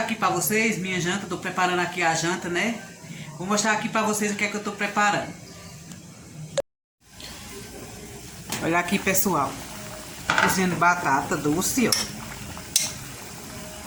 para vocês minha janta. Tô preparando aqui a janta, né? Vou mostrar aqui para vocês o que é que eu tô preparando. Olha aqui, pessoal. Cozinhando batata doce, ó.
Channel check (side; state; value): both; identical; correlation 1.00